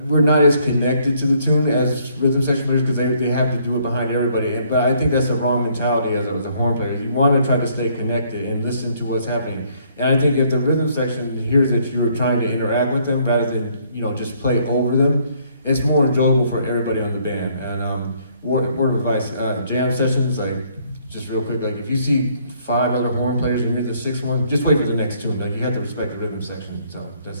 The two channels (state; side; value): inverted; both; correlation -0.66